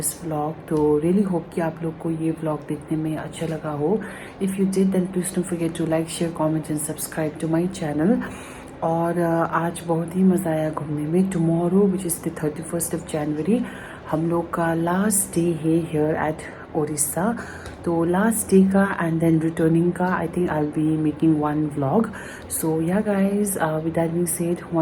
vlog. तो रियली होप कि आप लोग को ये व्लॉग देखने में अच्छा लगा हो. If you did then please don't forget to like share comment and subscribe to my channel. और आज बहुत ही मज़ा आया घूमने में. Tomorrow which is the 31st of January हम लोग का लास्ट डे है हियर एट ओडिशा. तो लास्ट डे का एंड देन रिटर्निंग का I think I will be making one vlog. So yeah guys, with that being said,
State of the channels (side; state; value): both; identical; correlation 1.00